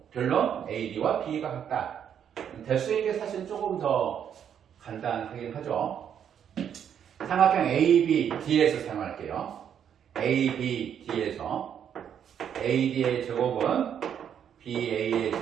결론 AD와 B가 같다. 대수인 게 사실 조금 더 간단하긴 하죠. 삼각형 ABD에서 사용할게요. ABD에서 AD의 제곱은 BA의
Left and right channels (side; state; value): left; quieter; 8.7 dB